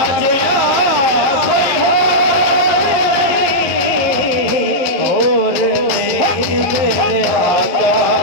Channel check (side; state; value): right; late; 11 ms